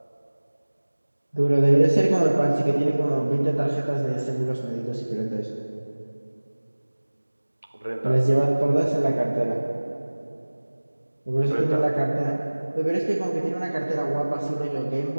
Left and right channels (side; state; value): both; inverted; correlation -1.00